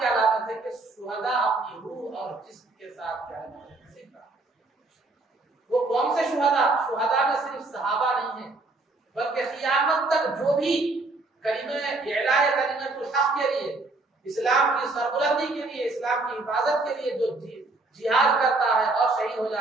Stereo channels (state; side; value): quieter; left; 3.3 dB